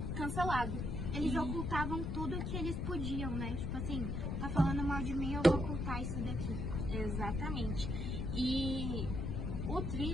cancelado. Eles ocultavam tudo que eles podiam, né? Tipo assim, tá falando mal de mim, eu vou ocultar isso daqui. Exatamente. E o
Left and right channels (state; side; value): noise; left; rumble, 1 dB below the sound